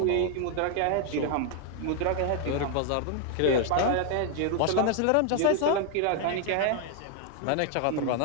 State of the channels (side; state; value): both; different; correlation 0.00